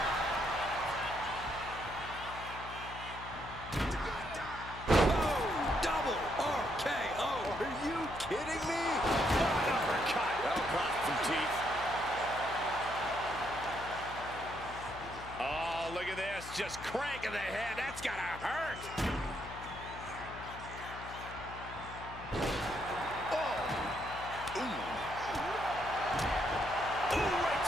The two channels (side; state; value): left; noise; hum, 13 dB below the sound